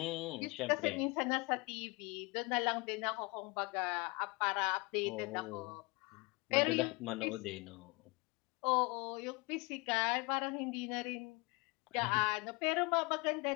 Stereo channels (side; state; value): right; quieter; 27.4 dB